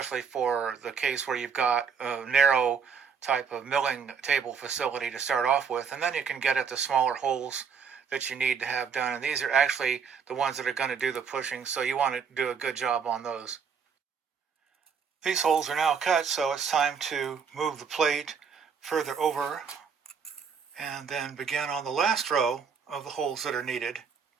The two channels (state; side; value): quieter; left; 6.4 dB